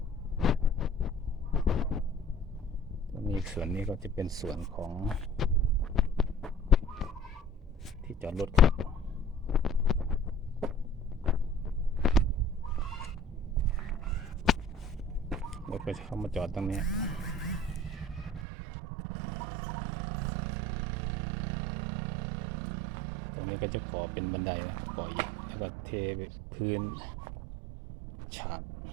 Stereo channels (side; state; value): left; drops out; at 18.4 s